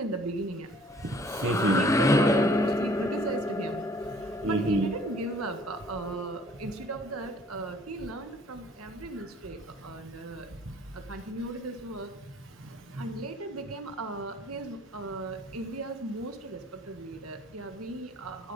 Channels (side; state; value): both; normal; correlation 0.56